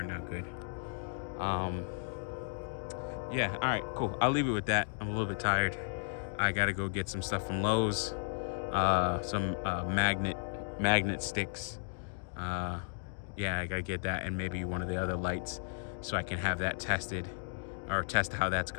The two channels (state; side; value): silent; right; digital silence